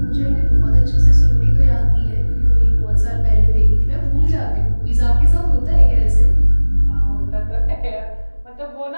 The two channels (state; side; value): inverted; both; correlation -1.00